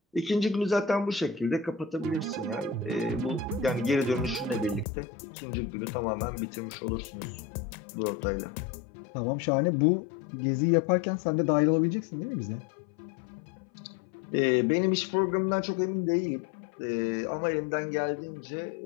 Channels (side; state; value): right; drops out; at 4.9 s